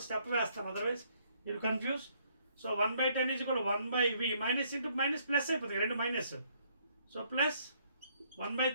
స్టెప్ వేస్తాను, అదర్వైజ్ మీరు కన్ఫ్యూజ్. సో 1/10 ఈజ్ కూడా 1/V minus into minus plus అయిపోతుంది, రెండు మైనస్. సో ప్లస్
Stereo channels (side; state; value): both; inverted; correlation -0.68